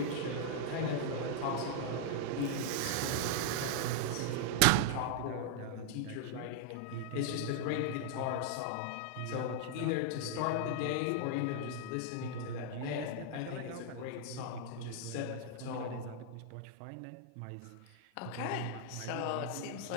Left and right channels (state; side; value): different; both; correlation -0.01